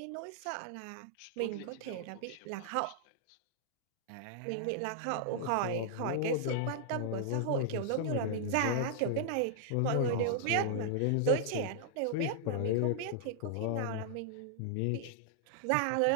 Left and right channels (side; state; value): both; different; correlation -0.01